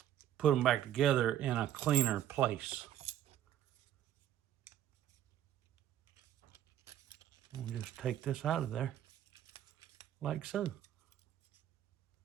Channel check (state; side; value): quieter; left; 11.4 dB